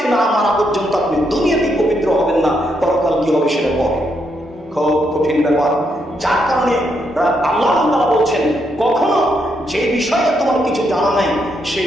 না মারা পর্যন্ত আপনি দুনিয়াতেই পবিত্র হবেন না, পরকাল কি হবে সেটা পরে। খুব কঠিন ব্যাপার, যার কারণে আল্লাহ তাআলা বলছেন কখনো যে বিষয়ে তোমার কিছু জানা নাই সেই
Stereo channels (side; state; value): both; normal; correlation 0.78